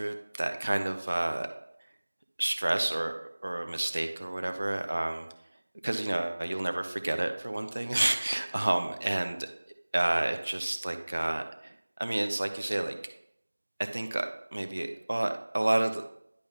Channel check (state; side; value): inverted; both; correlation -1.00